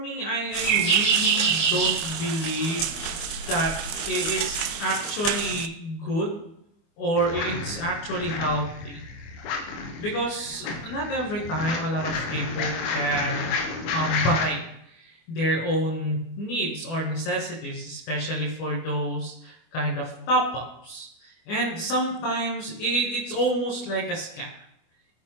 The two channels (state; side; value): late; right; 25 ms